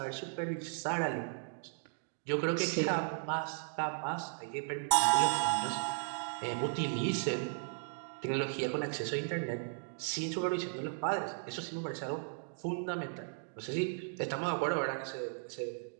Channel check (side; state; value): left; silent; digital silence